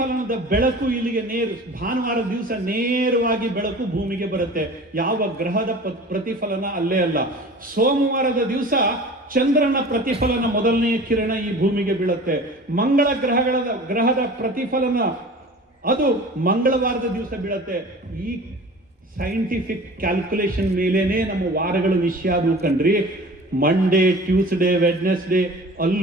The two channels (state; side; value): normal; both; correlation 0.41